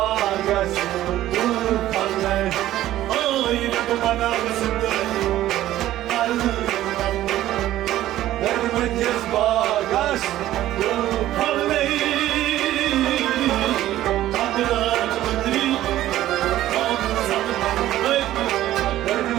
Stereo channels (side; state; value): left; quieter; 13.9 dB